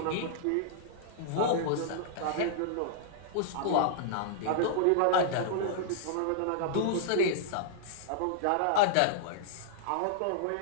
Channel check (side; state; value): both; different; correlation -0.01